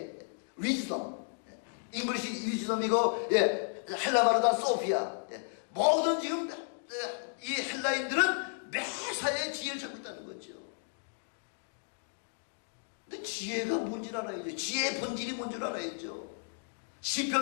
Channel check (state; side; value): silent; right; digital silence